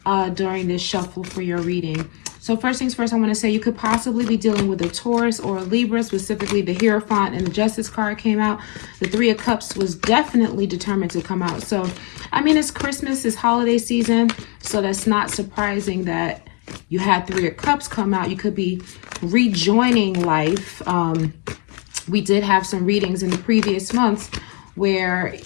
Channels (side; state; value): right; quieter; 33.7 dB